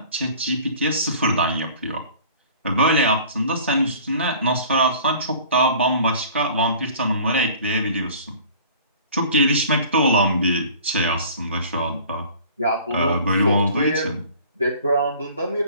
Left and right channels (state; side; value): inverted; both; correlation -0.47